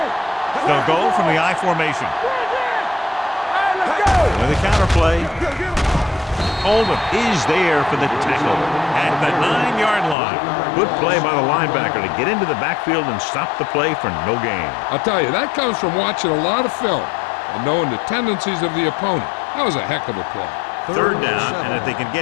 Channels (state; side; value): drops out; right; at 10.2 s